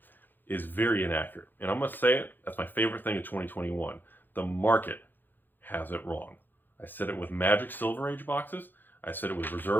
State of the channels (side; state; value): right; late; 0.091 ms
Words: is very inaccurate. And I'm going to say it, that's my favorite thing of 2021. The market has it wrong. I said it with Magic Silver Age boxes. I said it with